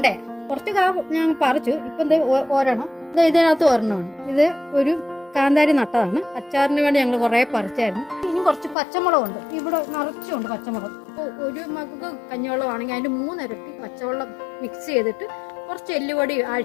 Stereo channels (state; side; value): drops out; right; at 8.8 s